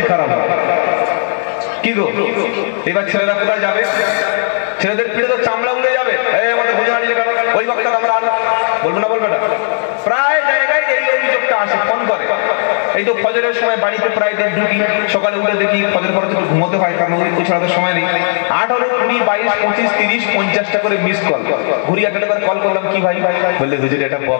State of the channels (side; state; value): right; silent; digital silence